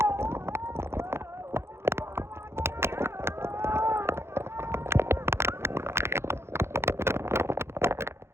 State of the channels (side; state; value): left; late; 0.12 ms